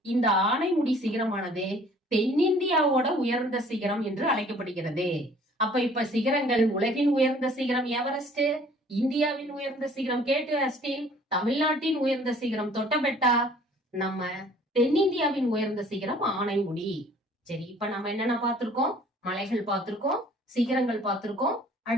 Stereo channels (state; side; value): normal; both; correlation 0.54